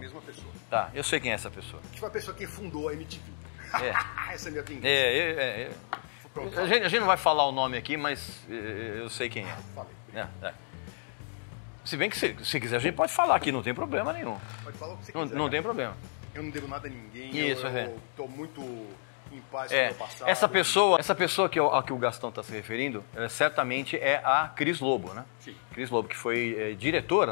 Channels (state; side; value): silent; right; digital silence